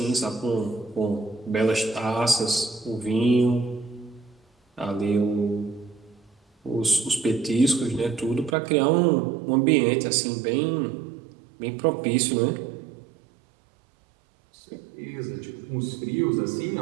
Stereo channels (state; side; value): drops out; left; at 8.6 s